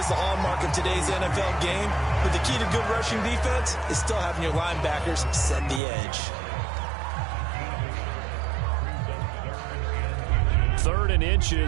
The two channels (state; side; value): drops out; left; at 5.8 s